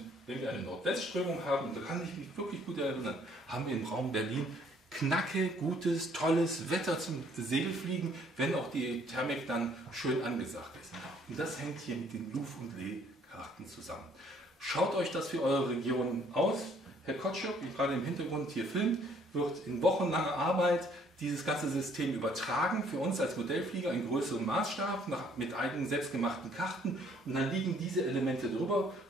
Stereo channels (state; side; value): normal; both; correlation 0.63